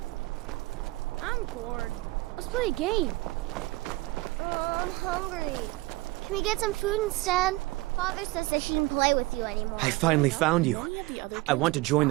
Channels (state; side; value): quieter; left; 21.7 dB